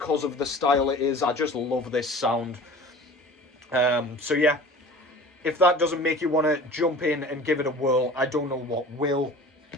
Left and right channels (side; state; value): both; normal; correlation 0.42